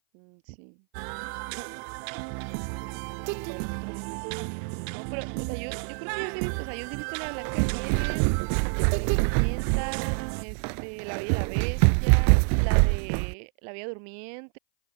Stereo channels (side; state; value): left; silent; 58 dB below the other